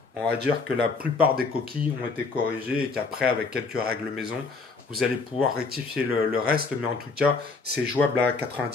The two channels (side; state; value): right; quieter; 4.3 dB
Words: On va dire que la plupart des coquilles ont été corrigées et qu'après, avec quelques règles maison, Vous allez pouvoir rectifier le reste, mais en tout cas, c'est jouable à